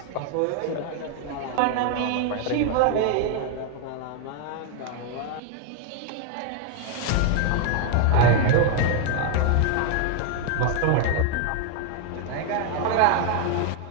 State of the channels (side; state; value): both; different; correlation 0.00